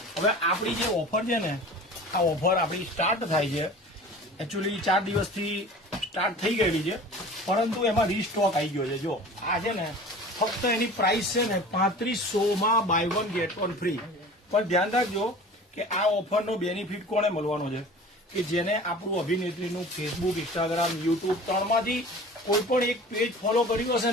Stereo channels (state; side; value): normal; both; correlation 0.41